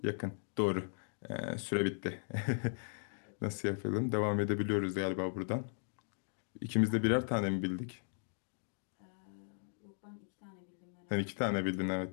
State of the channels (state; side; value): silent; right; digital silence